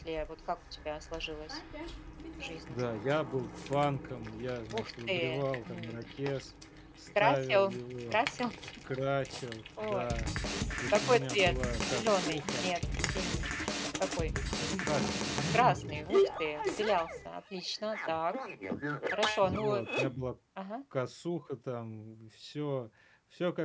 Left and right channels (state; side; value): identical; both; correlation 1.00